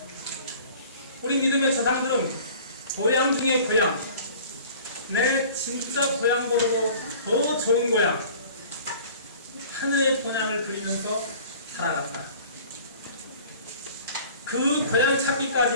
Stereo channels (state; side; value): inverted; both; correlation -0.46